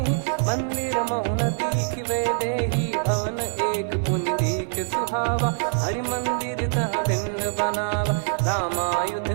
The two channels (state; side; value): silent; left; 62 dB below the other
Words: मंदिर महु न दीखिबे देहि। भवन एक पुनि दीख सुहावा, हरि मंदिर तहाँ भिन्न बनावा। रामायुध